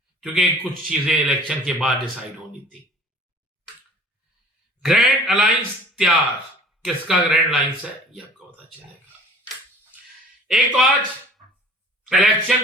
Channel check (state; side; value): normal; both; correlation 0.47